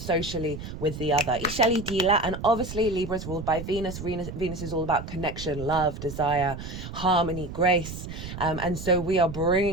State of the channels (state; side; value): noise; right; rumble, 9 dB below the sound